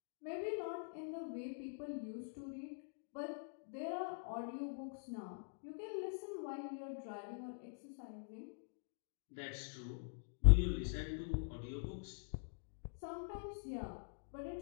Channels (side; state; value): right; silent; digital silence